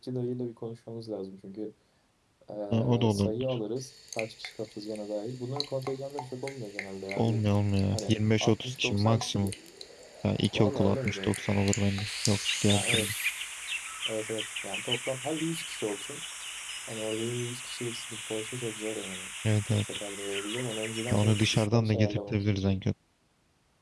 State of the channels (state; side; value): identical; both; correlation 1.00